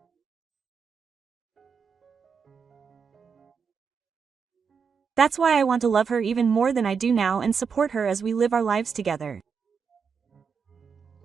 That's why I want to love her even more than I do now and support her as we live our lives together.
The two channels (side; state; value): left; quieter; 6.1 dB